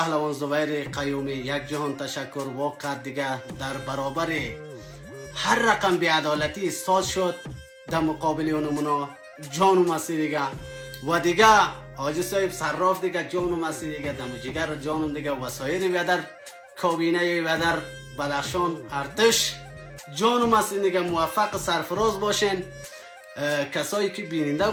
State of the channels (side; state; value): both; identical; correlation 1.00